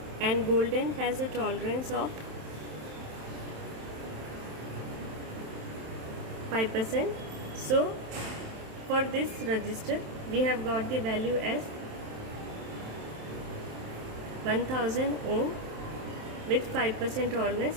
and golden has a tolerance of 5%. So for this resistor we have got the value as 1000 ohm with 5%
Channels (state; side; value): late; left; 27 ms